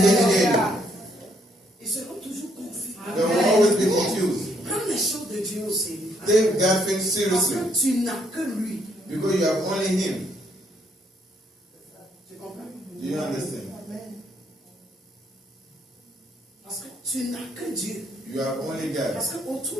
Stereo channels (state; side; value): normal; both; correlation 0.70